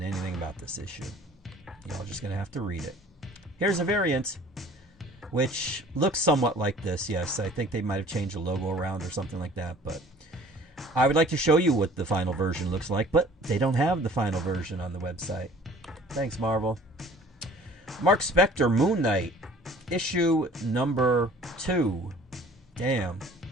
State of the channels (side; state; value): both; normal; correlation 0.50